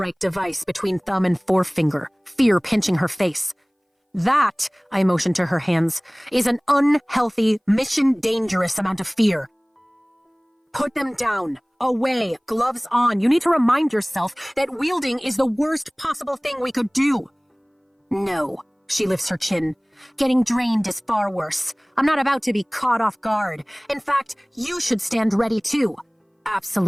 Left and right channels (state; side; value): identical; both; correlation 1.00